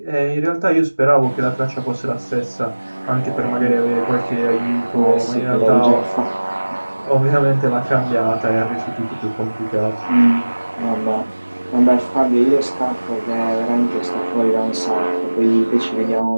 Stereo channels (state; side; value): inverted; both; correlation -1.00